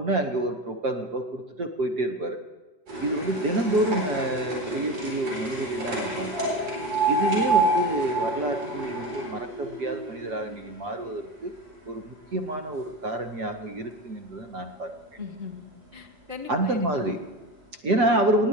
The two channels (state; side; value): late; left; 6.2 ms